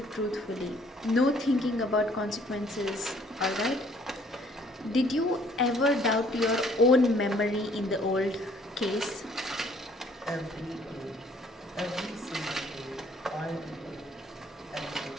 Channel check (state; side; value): normal; both; correlation 0.60